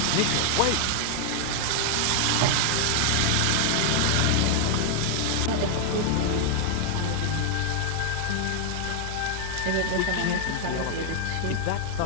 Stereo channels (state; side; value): different; both; correlation 0.00